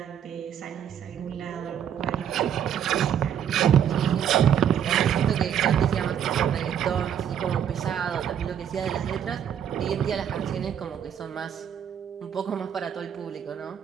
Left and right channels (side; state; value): left; quieter; 9.1 dB